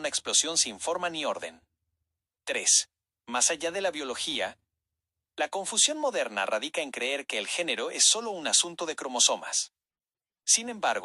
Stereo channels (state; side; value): identical; both; correlation 1.00